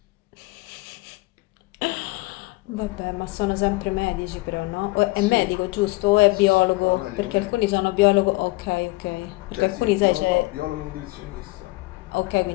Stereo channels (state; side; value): quieter; right; 22.0 dB